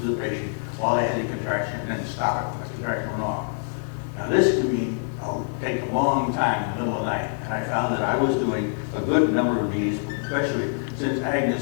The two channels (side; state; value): right; silent; 62 dB below the other